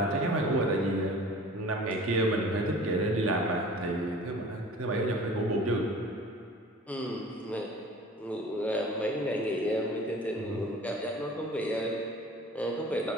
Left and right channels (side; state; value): both; normal; correlation 0.44